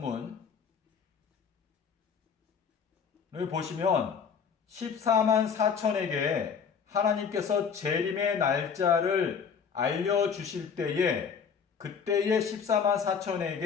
보시면 14만 4천에게 하나님께서 재림의 날짜를 알려주실 때에 그때에 14만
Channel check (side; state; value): right; quieter; 6.5 dB